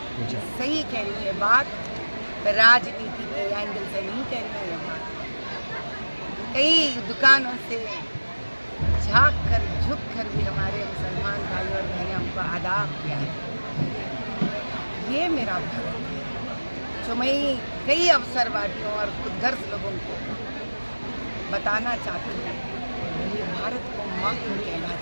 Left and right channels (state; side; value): inverted; both; correlation -1.00